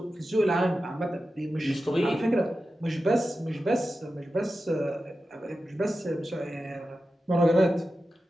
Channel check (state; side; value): normal; both; correlation 0.92